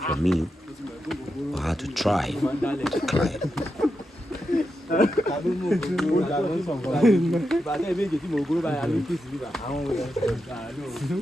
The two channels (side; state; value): both; normal; correlation 0.87